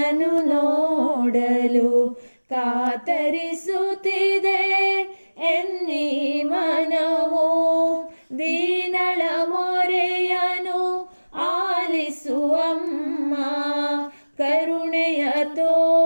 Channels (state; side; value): inverted; both; correlation -1.00